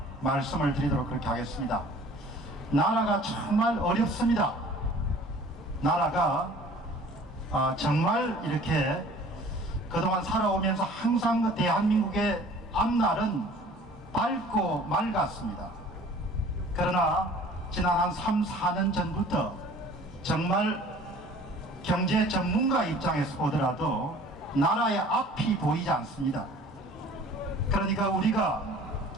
말씀을 드리도록 그렇게 하겠습니다. 나라가 정말 어렵습니다. 나라가 정말 이렇게 그동안 살아오면서 항상 그 대한민국의 앞날은 밝고 맑았습니다. 그러나 지난 한 3, 4년 전부터 정말 경제 전문가 입장에서 보더라도 나라의 앞이 보이지 않습니다. 그러니까 우리가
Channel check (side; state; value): both; normal; correlation 0.50